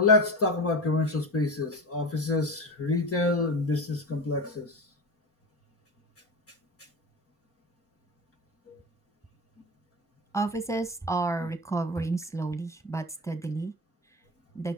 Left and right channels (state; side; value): normal; both; correlation 0.26